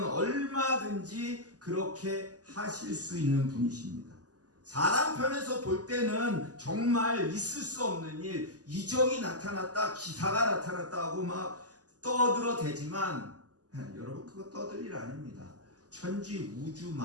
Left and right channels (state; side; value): late; left; 0.67 ms